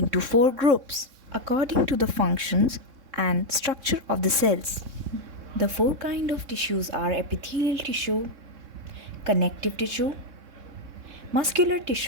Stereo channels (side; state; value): left; late; 3.6 ms